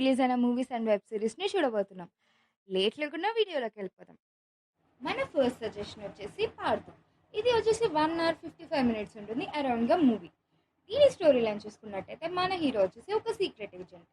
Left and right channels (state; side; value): identical; both; correlation 1.00